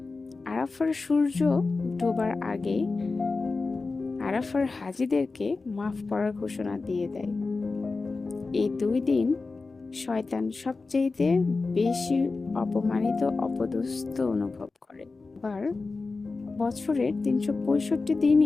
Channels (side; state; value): right; quieter; 3.9 dB